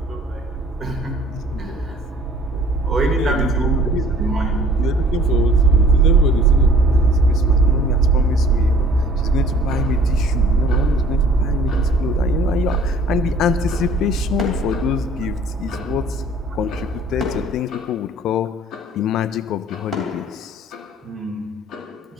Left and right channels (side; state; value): both; normal; correlation 0.52